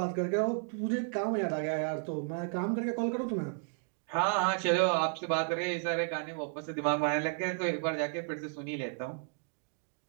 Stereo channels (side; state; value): left; silent; 56 dB below the other